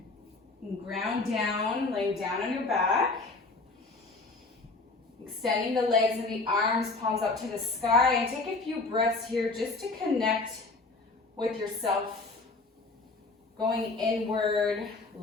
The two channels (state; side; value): quieter; right; 3.5 dB